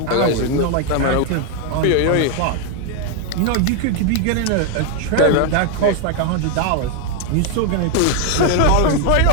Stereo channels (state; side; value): different; both; correlation 0.00